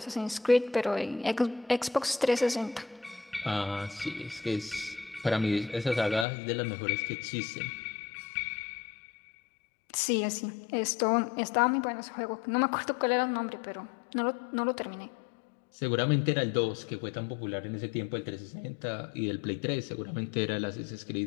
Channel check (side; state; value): right; drops out; at 6.2 s